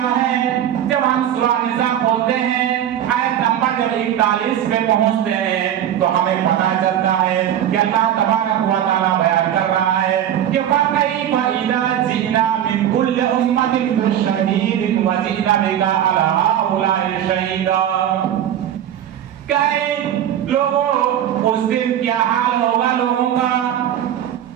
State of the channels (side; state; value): left; quieter; 10.6 dB